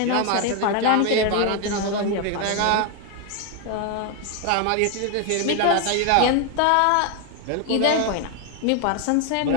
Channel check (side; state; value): both; different; correlation 0.01